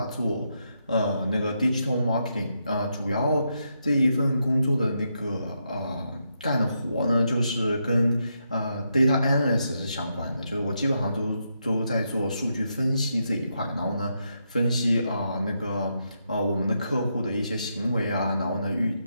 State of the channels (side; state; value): both; inverted; correlation -0.82